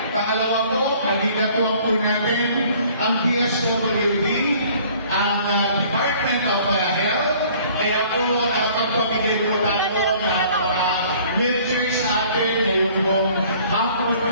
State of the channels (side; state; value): both; inverted; correlation -0.54